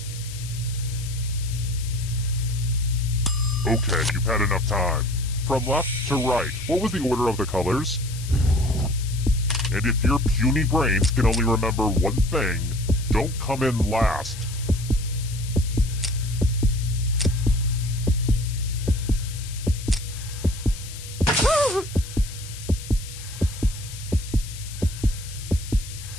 Okay, you've had enough time. From left to right, what was the order of the colors? And if your puny brains can only remember one thing, don't come in last.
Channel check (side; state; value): left; noise; hiss, 14 dB below the sound